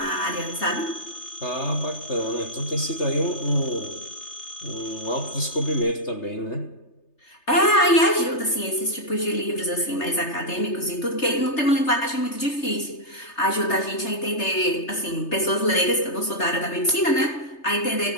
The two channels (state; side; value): late; right; 3.3 ms